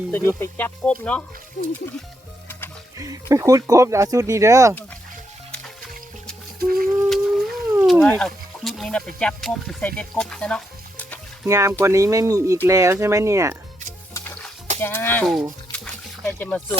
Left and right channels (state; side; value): normal; both; correlation 0.80